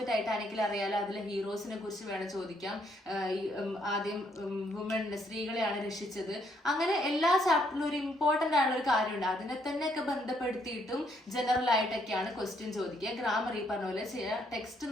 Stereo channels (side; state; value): both; normal; correlation 0.71